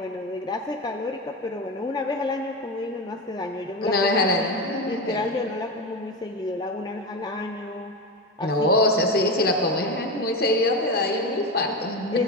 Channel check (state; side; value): normal; both; correlation 0.19